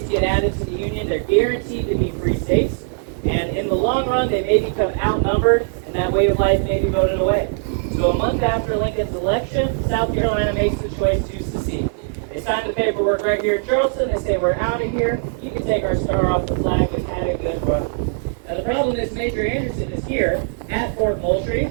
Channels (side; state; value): left; silent; digital silence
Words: get added to the Union, they're guaranteed to be free states, and in the long run, they may become outnumbered, and that way of life may be voted away. So a month after Lincoln's election, South Carolina makes the choice to secede. They sign the paperwork right here in Charleston. They say, we're out of here. You can take our star off the flag. We've had a good run. Now, the problem is Major Anderson is here at Fort Moultrie